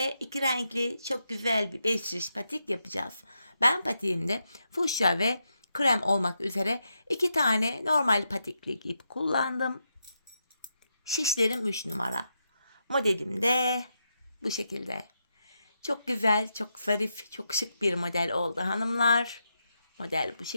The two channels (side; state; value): both; inverted; correlation -0.84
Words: iki renkli çok güzel bir 5 şiş patik yapacağız. Ben patiğimde fuşya ve krem olmak üzere 2 tane normal patiklik ip kullandım. Şişlerim 3 numara. Modelim de bu şekilde. Çok güzel, çok zarif, çok şık bir model oldu hanımlar. Model bu